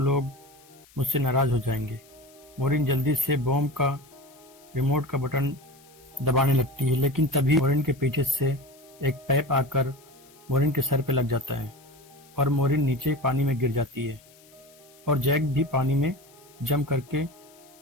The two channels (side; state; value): left; noise; hiss, 27 dB below the sound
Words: मुझसे नाराज हो जाएंगे। मोरिन जल्दी से बॉम्ब का रिमोट का बटन दबाने लगती है, लेकिन तभी मोरिन के पीछे से एक पाइप आकर मोरिन के सर पे लग जाता है और मोरिन नीचे पानी में गिर जाती है और जैक भी पानी में जंप करके